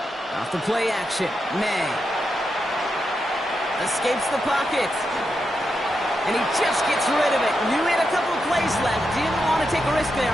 Off the play action, May. Escapes the pocket. And he just gets rid of it. Knew he had a couple of plays left. Didn't want to take a risk there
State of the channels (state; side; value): normal; both; correlation 0.86